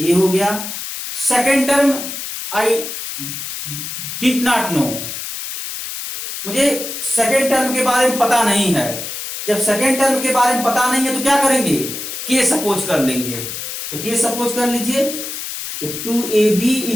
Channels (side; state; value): left; noise; hiss, 7 dB below the sound